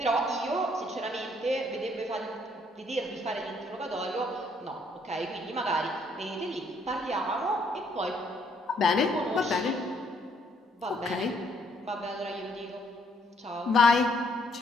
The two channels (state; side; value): normal; both; correlation 0.68